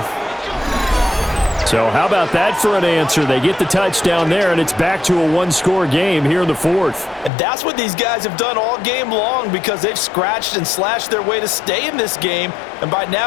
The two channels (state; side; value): drops out; right; at 7.3 s